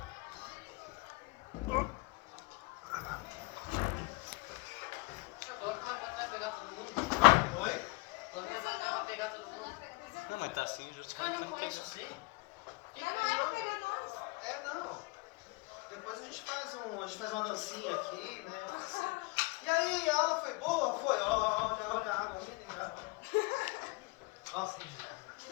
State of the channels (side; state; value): right; quieter; 25.9 dB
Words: Chegou, como é que vai pegar todo mundo? Oi? Como é que vai pegar todo mundo? Não, mas tá assim, Os caras não conhecem você. Não. Depois a gente faz uma dancinha aqui, né? Assim. E aí, a aula foi boa? Foi. Olha a água mineral. Nossa, que dia.